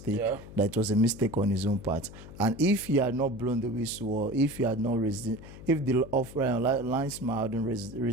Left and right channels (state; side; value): noise; left; hum, 16 dB below the sound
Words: that it was a mistake on his own part. And if he had not blown the whistle, or if he had not raised it, if the linesman hadn't